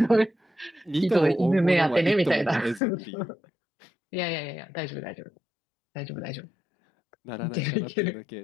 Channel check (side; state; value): right; drops out; at 2.8 s